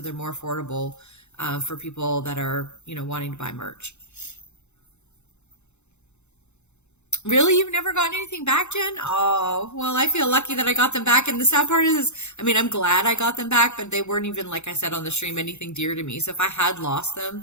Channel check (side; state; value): right; late; 0.82 ms